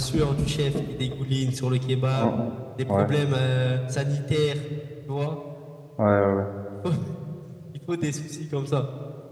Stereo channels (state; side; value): identical; both; correlation 1.00